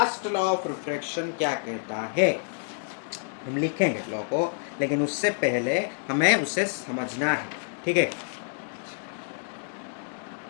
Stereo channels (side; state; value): right; silent; 59 dB below the other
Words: लॉ ऑफ रिफ्रैक्शन क्या कहता है, हम लिखेंगे लॉ को, लेकिन उससे पहले हमें उसे समझना है, ठीक है।